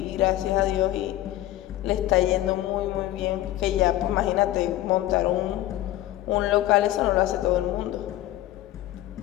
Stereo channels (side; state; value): right; quieter; 14.6 dB